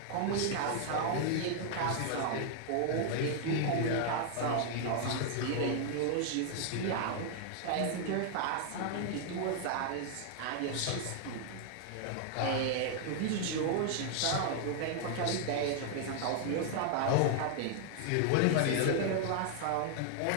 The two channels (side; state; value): both; different; correlation 0.00